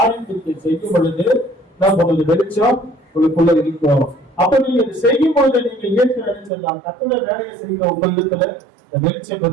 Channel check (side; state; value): left; drops out; at 6.5 s